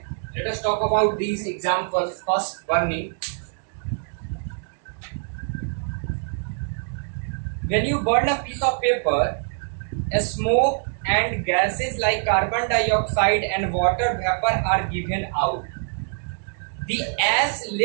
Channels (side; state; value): left; silent; 60 dB below the other